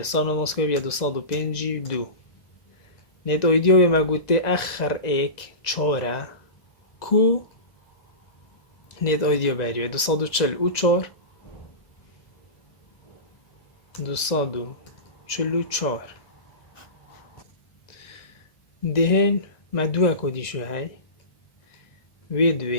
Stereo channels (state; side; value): late; right; 2.0 ms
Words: سانو مسکوی بیا 252 نت اویدیو به مگوته اخر ایک چاره کو نت اویدیو بریوه 244 244 دهن ما دو کدی شو های و